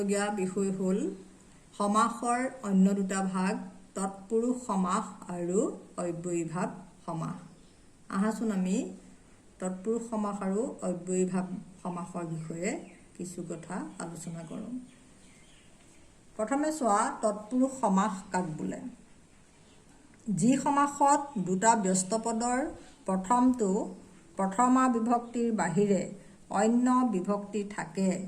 বিষয় হ'ল সমাসৰ অন্য দুটা ভাগ, তৎপুৰুষ সমাস আৰু অব্যয়ীভাৱ সমাস। আহাচোন আমি তৎপুৰুষ সমাস আৰু অব্যয়ীভাৱ সমাসৰ বিষয়ে কিছু কথা আলোচনা কৰোঁ। প্ৰথমে চোৱা, তৎপুৰুষ সমাস কাক বোলে? যি সমাসত দুটা ব্যস্ত পদৰ প্ৰথমটো প্ৰথমা বিভক্তিৰ বাহিৰে অন্য বিভক্তি থাকে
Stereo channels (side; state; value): both; identical; correlation 1.00